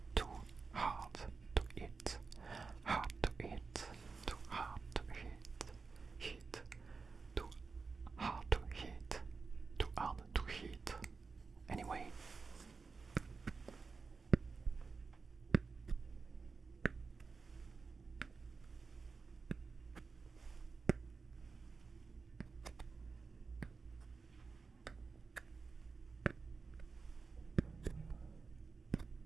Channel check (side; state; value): left; quieter; 4.6 dB